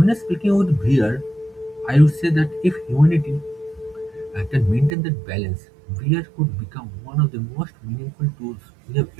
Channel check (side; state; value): left; drops out; at 4.9 s